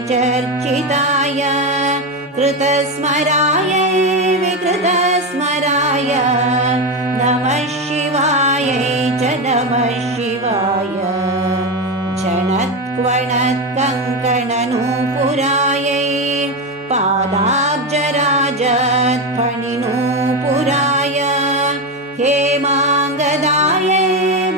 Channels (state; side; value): normal; both; correlation 0.14